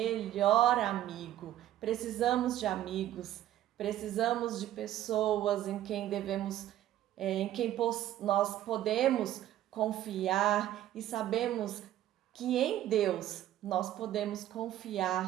amigo. Precisamos de amigos, precisamos de pessoas em quem nós podemos confiar e sabemos que em Deus nós podemos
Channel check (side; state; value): left; quieter; 12.8 dB